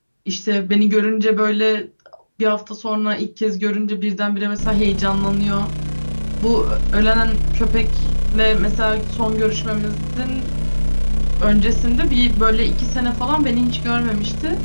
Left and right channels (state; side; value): inverted; both; correlation -1.00